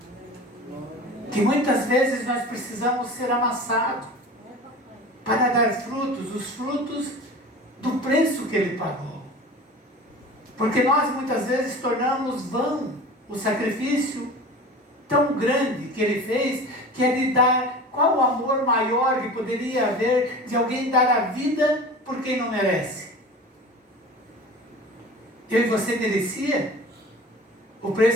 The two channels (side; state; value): both; normal; correlation 0.37